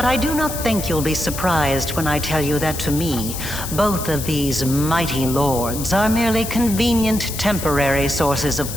I do not think you'll be surprised when I tell you that to me, both of these mighty lords are merely convenient temporary sources of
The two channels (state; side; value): noise; left; hiss, 8 dB below the sound